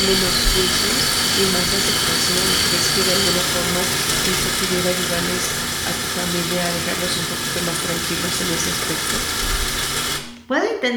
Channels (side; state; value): both; identical; correlation 1.00